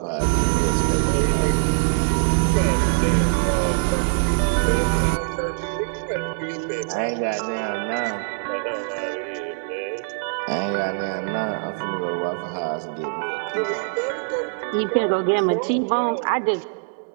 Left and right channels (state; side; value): silent; left; digital silence